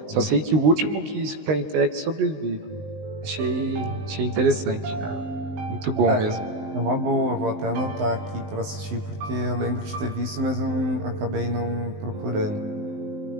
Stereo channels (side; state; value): left; late; 19 ms